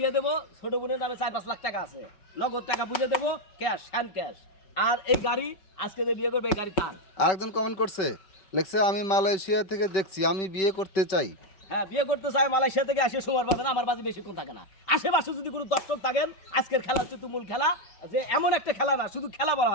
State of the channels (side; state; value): right; late; 5.4 ms